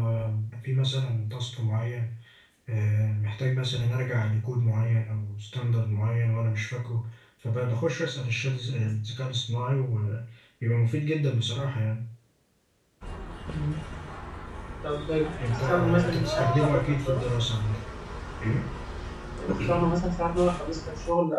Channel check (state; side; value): identical; both; correlation 1.00